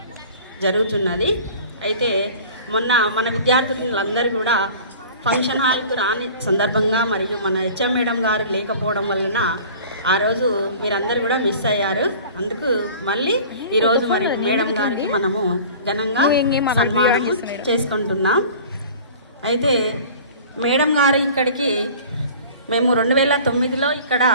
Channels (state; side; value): inverted; both; correlation -0.43